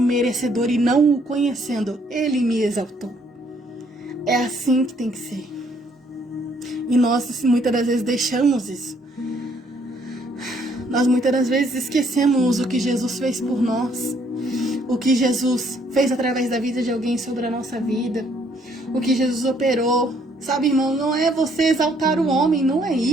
merecedor e não o conhecendo, ele me exaltou. É assim que tem que ser. E nós muitas das vezes deixamos isso. Nós muitas das vezes esquecemos o que Jesus fez por nós, o que Jesus fez através da vida de alguém sobre a nossa vida, o que Jesus operou. Sabe, irmão, não é você exaltar o homem, não é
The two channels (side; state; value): both; normal; correlation 0.66